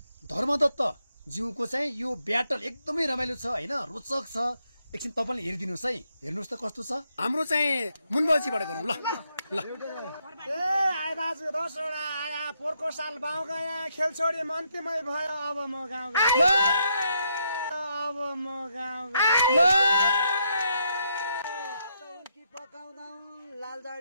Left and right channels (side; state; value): both; inverted; correlation -0.77